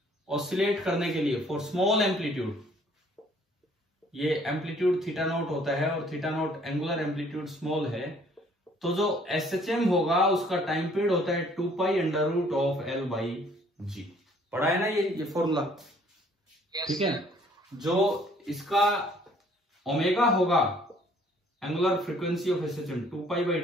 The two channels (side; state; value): both; normal; correlation 0.59